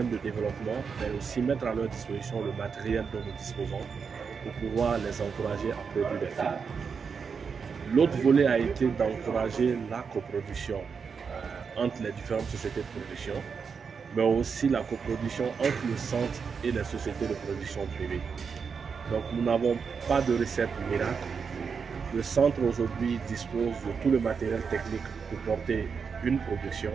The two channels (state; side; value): quieter; left; 5.9 dB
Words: de développement, mais aussi mettre à leur disposition le matériel dont nous disposons pour pouvoir les encourager à produire des films. L'autre volet a été d'encourager la coproduction entre les différentes sociétés de production, mais aussi la coproduction entre le centre et les sociétés de production privées. Donc nous n'avons pas de recette miracle. Le centre aujourd'hui dispose de tout le matériel technique pour porter une production